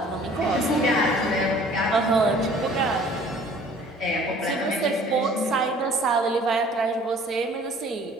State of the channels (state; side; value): normal; both; correlation 0.52